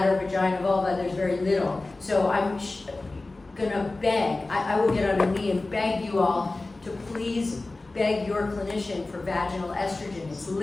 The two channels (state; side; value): quieter; right; 3.2 dB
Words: vagina, vulva, there's very little. So I'm gonna beg, I will get on a knee and beg you all to please beg your clinician for vaginal estrogen. It's